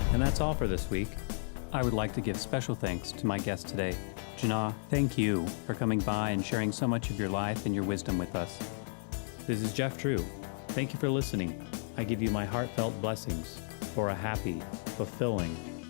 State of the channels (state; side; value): silent; right; 56 dB below the other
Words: And that's all for this week. I would like to give special thanks to my guest today. Jana, thank you for coming by and sharing so much of your life and your wisdom with us. This is Jeff Drew. Thank you for listening. I give you my heartfelt blessings for a happy, fulfilling,